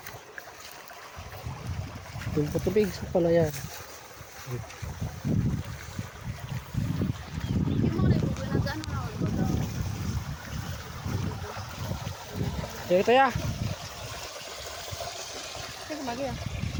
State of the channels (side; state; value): both; identical; correlation 1.00